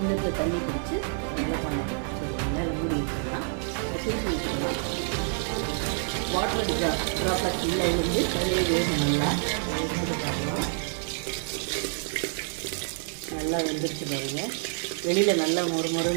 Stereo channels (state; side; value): silent; left; 60 dB below the other